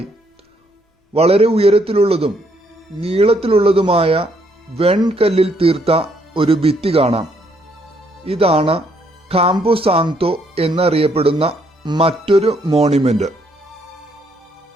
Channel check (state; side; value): normal; both; correlation 0.70